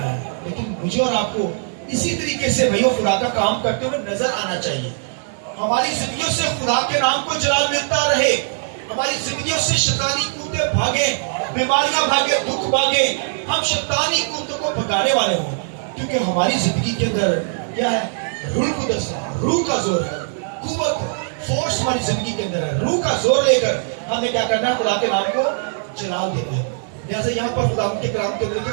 ہے. لیکن مجھے اور آپ کو اسی طریقے سے بھائیو خدا کا کام کرتے ہوئے نظر آنا چاہیے. ہماری زندگیوں سے خدا کے نام کو جلال ملتا رہے, ہماری زندگیوں سے شیطانی قوتیں بھاگیں, بیماریاں بھاگیں, دکھ بھاگیں, ہم شیطانی قوتوں کو بھگانے والے ہوں. کیونکہ ہماری زندگی کے اندر کیا ہے, روح القدس ہے, روح کا زور ہے, قوت ہے, فورس ہماری زندگی کے اندر ہے. روح کا زور لے کر ہمیں کیا کرنا ہے, خدا کے نام کو جلال دینا ہے. لہٰذا یہاں پر خدا کے کلام کے اندر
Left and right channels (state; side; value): silent; left; 65 dB below the other